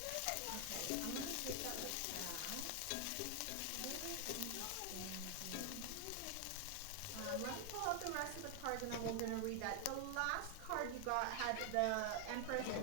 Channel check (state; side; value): different; both; correlation 0.00